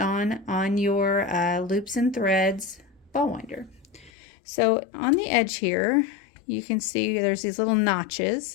on your loops and threads ball winder. So on the edge here, you can see there's these little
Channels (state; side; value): drops out; right; at 4.1 s